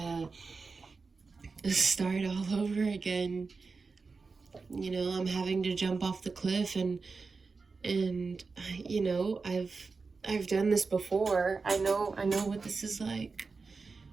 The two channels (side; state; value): left; quieter; 4.4 dB